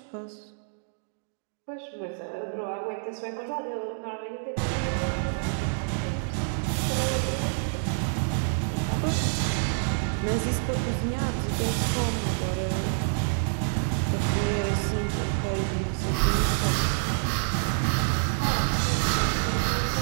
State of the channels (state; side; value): silent; left; digital silence